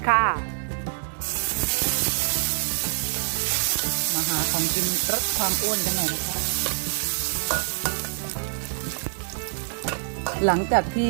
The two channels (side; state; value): left; silent; digital silence